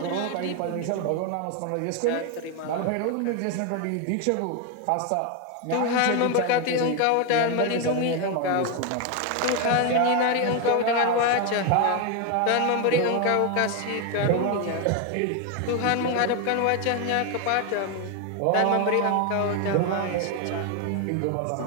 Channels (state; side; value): different; both; correlation 0.01